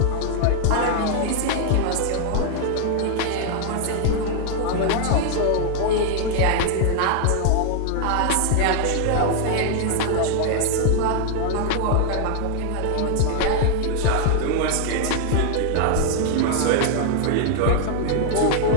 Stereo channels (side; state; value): both; different; correlation 0.00